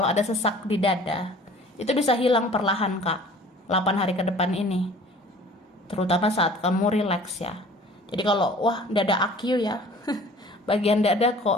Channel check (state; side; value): normal; both; correlation 0.48